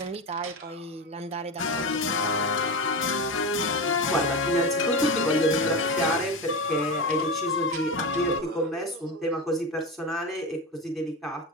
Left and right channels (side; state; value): both; normal; correlation 0.21